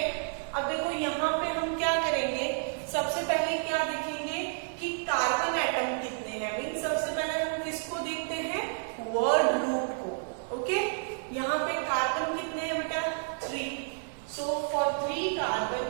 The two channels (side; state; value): left; silent; digital silence